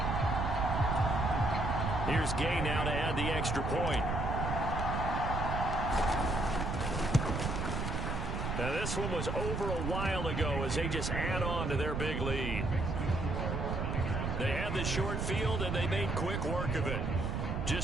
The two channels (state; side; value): noise; right; rumble, 2 dB below the sound